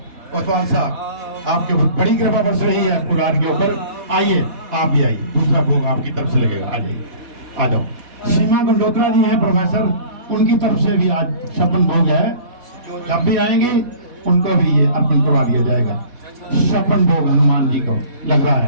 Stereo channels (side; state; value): left; late; 4.1 ms